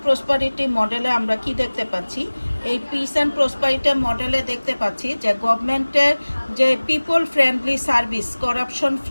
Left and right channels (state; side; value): inverted; both; correlation -1.00